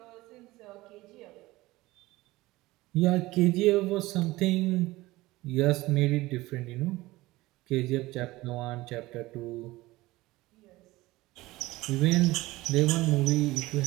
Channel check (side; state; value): left; quieter; 19.2 dB